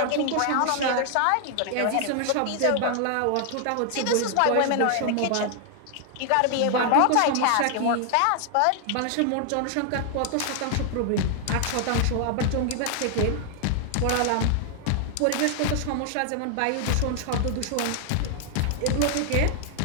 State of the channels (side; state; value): both; different; correlation 0.00